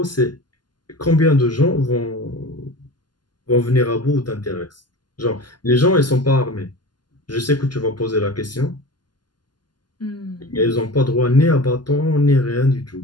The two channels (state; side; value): late; right; 0.71 ms